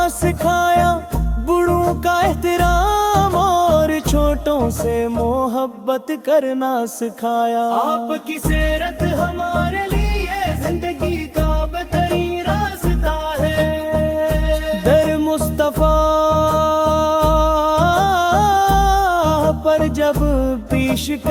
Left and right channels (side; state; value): both; identical; correlation 1.00